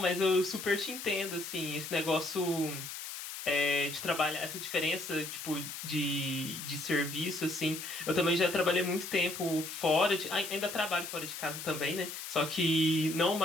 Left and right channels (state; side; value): noise; left; hiss, 8 dB below the sound